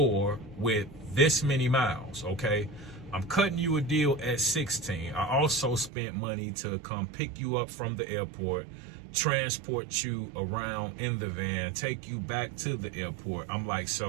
with this many miles. Okay, I'm cutting you a deal at 16. I also spent money to come pick you up from the airport, transport you around in the van, take you back to the airport. I'm like,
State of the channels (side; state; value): left; drops out; at 5.9 s